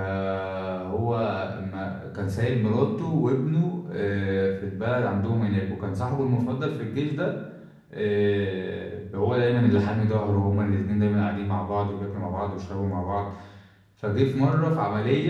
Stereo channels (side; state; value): both; identical; correlation 1.00